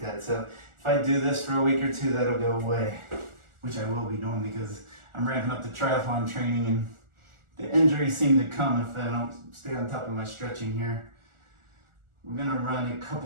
that. So if I do this for a week or two, that'll go away, which I will be doing because I'm ramping up the triathlon training, and the injuries seem to come if I don't stay on top of my stretching here. We're gonna run a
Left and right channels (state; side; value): late; left; 1.4 ms